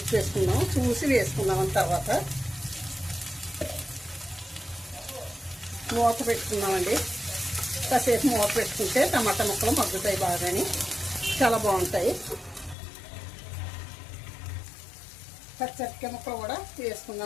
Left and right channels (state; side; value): drops out; right; at 12.8 s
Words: ఉప్పు వేసుకుందాం, చూసి వేసుకుందాం. తర్వాత మూత పెట్టుకుందామండి. కాసేపు మూత పెట్టుకుంటే టమాటా ముక్కలు మగ్గుతాయి బాగాని, చాలా బాగుంటాయి. పచ్చడికాయ ముక్కలు కూడా